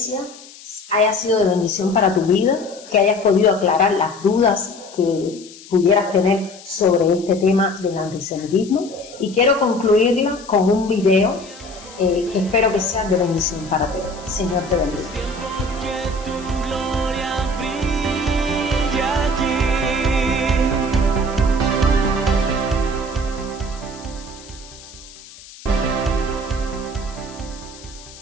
haya sido de bendición para tu vida, que hayas podido aclarar las dudas que pudieras tener sobre este tema del antisemitismo. Y quiero concluirla con un video que espero que sea de bendición para ti. Señor te bendiga.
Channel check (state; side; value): noise; left; hiss, 19 dB below the sound